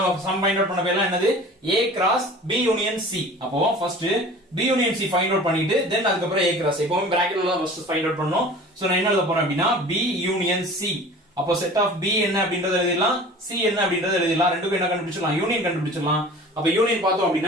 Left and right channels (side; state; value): both; normal; correlation 0.42